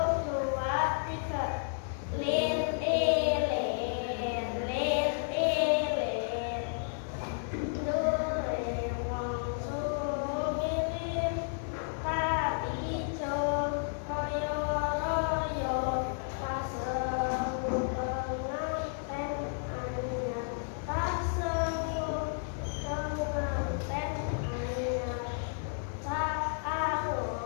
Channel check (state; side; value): silent; right; digital silence